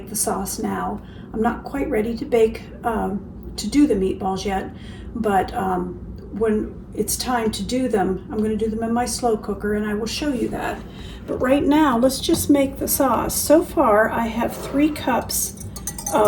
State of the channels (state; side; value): identical; both; correlation 1.00